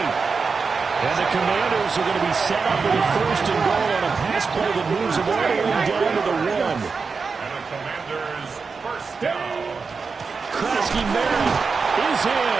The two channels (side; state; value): left; quieter; 4.9 dB